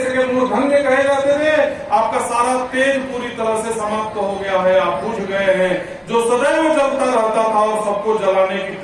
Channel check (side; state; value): both; identical; correlation 1.00